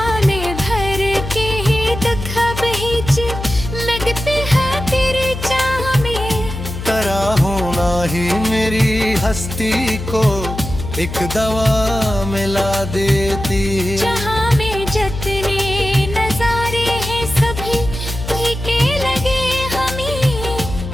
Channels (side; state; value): left; noise; hum, 8 dB below the sound